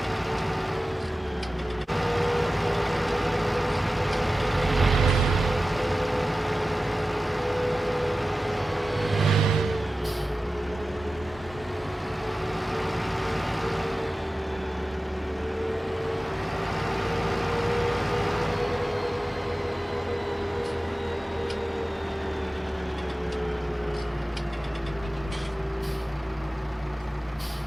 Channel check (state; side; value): normal; both; correlation 0.95